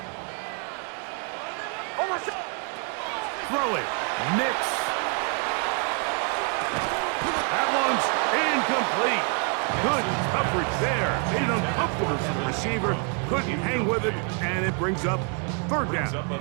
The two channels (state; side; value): quieter; left; 37.9 dB